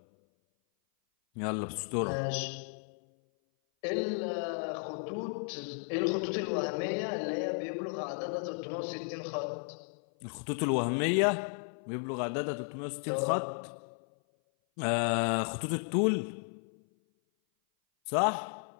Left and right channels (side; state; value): right; silent; 55 dB below the other